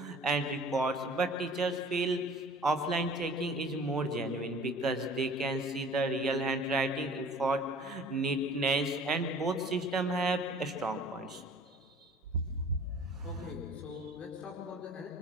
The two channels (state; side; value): normal; both; correlation 0.48